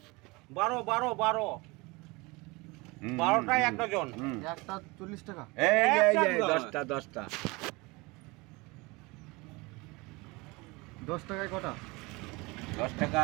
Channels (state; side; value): quieter; left; 24.8 dB